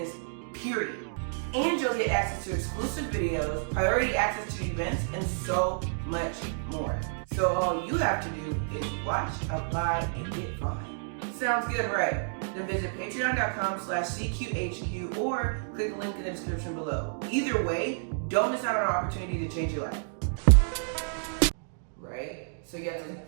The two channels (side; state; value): left; silent; digital silence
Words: period. And you'll get access to exclusive videos, priority access to events, and so much more. So all you have to do is watch, apply, and get fine. Sounds good, right? Then visit patreon.com/CQHQ or click the link in the description below. Either way, don't miss out on an opportunity to change your life. Right? So you have to,